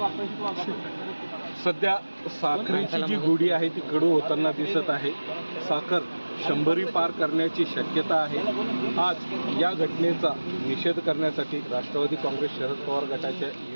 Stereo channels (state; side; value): inverted; both; correlation -1.00